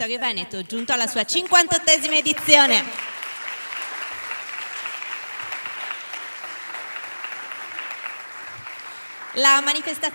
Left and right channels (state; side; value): inverted; both; correlation -1.00